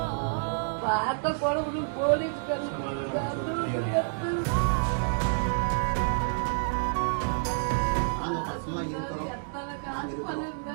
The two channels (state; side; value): silent; left; digital silence